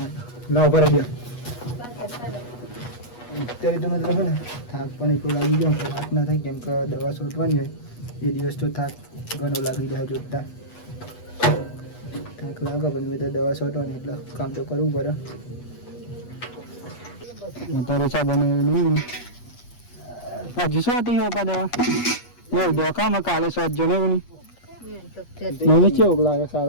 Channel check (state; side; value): late; right; 8.3 ms